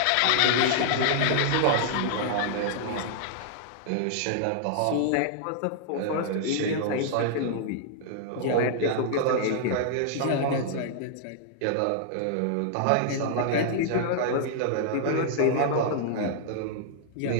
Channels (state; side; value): different; both; correlation -0.01